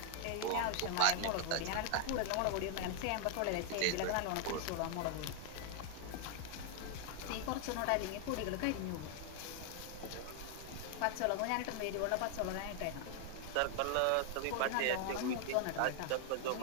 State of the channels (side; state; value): both; different; correlation 0.00